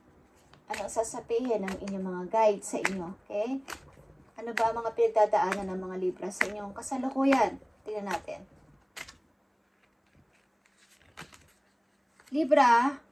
Ano sasabihin ng inyong mga guide sa inyo, okay? Ano ba ang mga pinagdadaanan ng mga Libra sa inyong kasalukuyan? Tingnan natin. Libra,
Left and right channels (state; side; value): identical; both; correlation 1.00